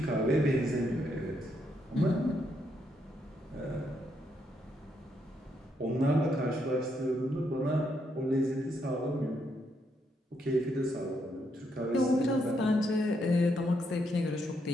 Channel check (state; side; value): normal; both; correlation 0.77